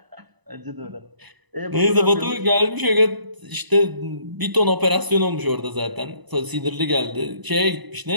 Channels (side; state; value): left; late; 1.0 ms